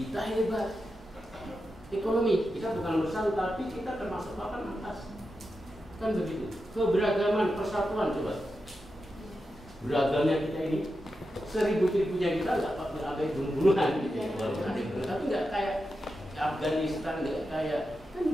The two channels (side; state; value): both; normal; correlation 0.89